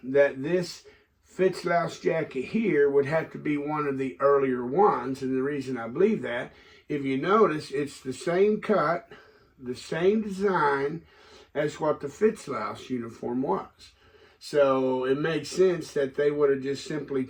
that this Fitzlouse jacket here would have to be one of the earlier ones, and the reason I believe that, if you notice, it's the same cut, the same design as what the Fitzlouse uniform was. So it makes sense that they would have just simply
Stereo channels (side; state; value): both; identical; correlation 1.00